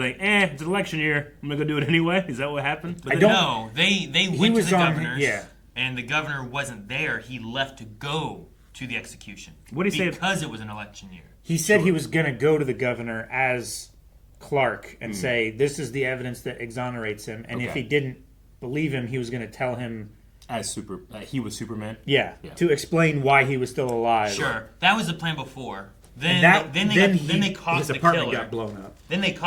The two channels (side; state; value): both; identical; correlation 1.00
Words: like, it's an election year. I'm gonna go do it anyway. Is that what happened? But No, they went to the governor's. Yeah. And the governor wasn't there. He left to go to the execution. What did he say? Because it was an election year. He said he was going to go to the governor as Clark and say, this is the evidence that exonerates him. And if he didn't believe him, he was going to tell him... he was Superman? Yeah, to explain why he was still alive. Sure. That was the plan before. Then they caught his the apartment killer. got blown up. Then they